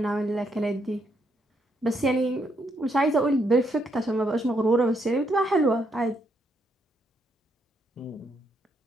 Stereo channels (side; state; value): both; normal; correlation 0.76